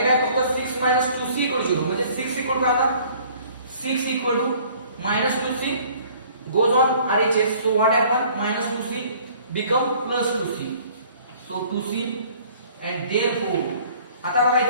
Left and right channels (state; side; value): inverted; both; correlation -0.54